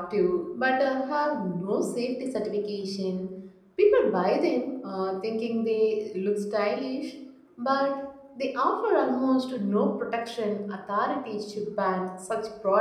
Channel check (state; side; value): identical; both; correlation 1.00